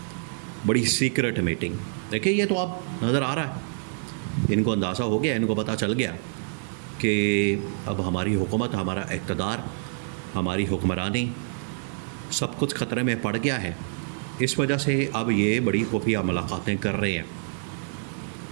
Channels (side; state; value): left; silent; 60 dB below the other